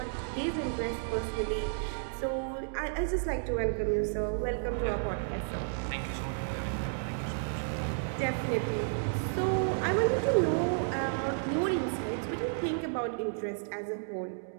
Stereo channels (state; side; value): silent; left; digital silence